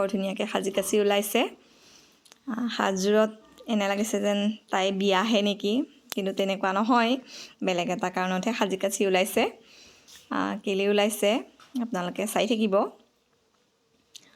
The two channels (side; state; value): both; identical; correlation 1.00